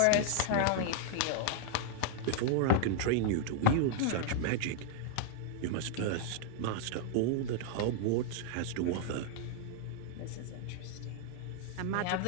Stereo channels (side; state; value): both; different; correlation 0.00